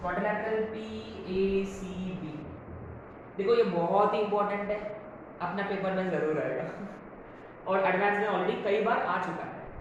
क्वाड्रिलैटरल PACB। देखो ये बहुत ही इंपॉर्टेंट है, अपना पेपर में जरूर आएगा और एडवांस में ऑलरेडी कई बार आ चुका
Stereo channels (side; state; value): both; identical; correlation 1.00